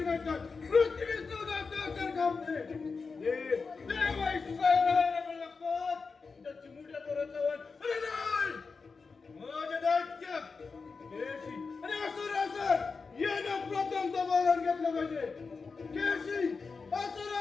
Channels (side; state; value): right; quieter; 4.7 dB